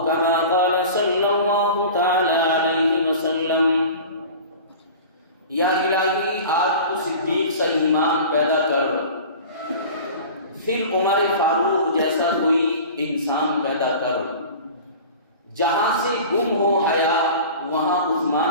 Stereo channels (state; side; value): inverted; both; correlation -0.38